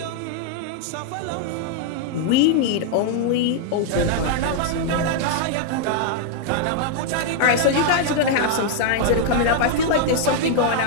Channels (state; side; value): different; both; correlation 0.00